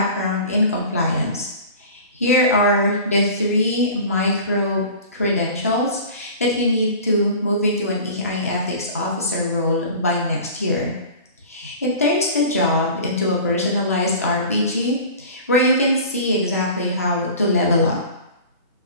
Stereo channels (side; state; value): both; inverted; correlation -0.40